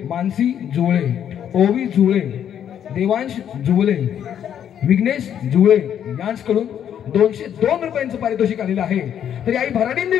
मानसी जुळे, ओवी जुळे, देवांश जुळे, विघ्नेश जुळे यांच्याकडून 202 रुपयांचं पारितोषिक आलेलं आहे. तरी आई भराडीन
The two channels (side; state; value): right; quieter; 9.4 dB